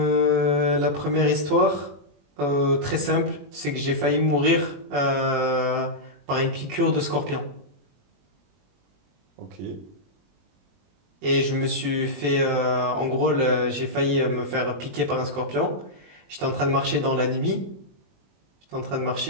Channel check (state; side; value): late; left; 21 ms